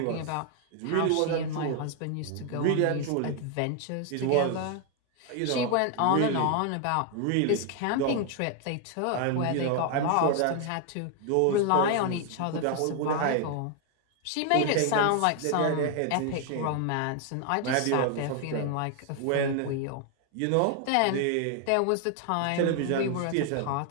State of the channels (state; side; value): different; both; correlation 0.00